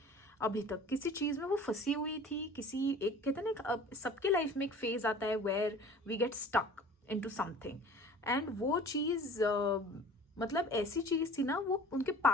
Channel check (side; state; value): both; normal; correlation 0.44